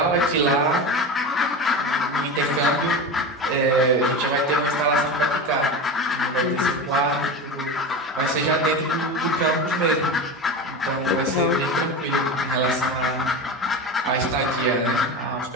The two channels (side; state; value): both; normal; correlation 0.24